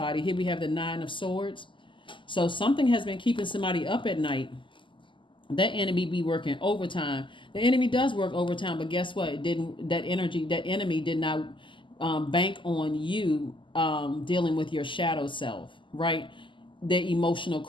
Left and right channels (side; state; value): right; late; 0.24 ms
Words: Here we have the Nine of Swords. So something has been keeping somebody up at night. That enemy be working overtime. The enemy does work overtime, but guess what? That enemy did not bank on you dealing with your shadow self, right? The emotional